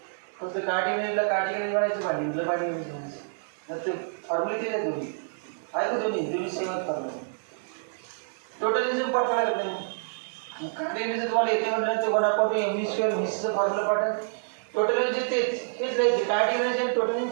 फक्त कायनेटिक एनर्जीला कायनेटिक एनर्जी म्हणायचं, बाइंडिंगला बाइंडिंग एनर्जी म्हणायचं. तर ते फॉर्म्युले केले दोन्ही आहे का दोन्ही सेमच फॉर्म्युला. टोटल एनर्जी पाठ करायला नाही. कायनेटिक एनर्जी तुम्हाला येते म्हटलं तर 1/2 mv² व्हीचं फॉर्म्युला पाठ आहे. टोटल एनर्जी हेच राहायचे. कायनेटिक एनर्जी आणि टोटल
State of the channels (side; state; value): left; silent; digital silence